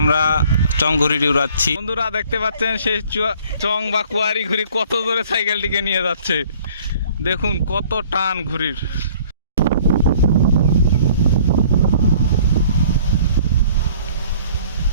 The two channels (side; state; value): both; inverted; correlation -0.54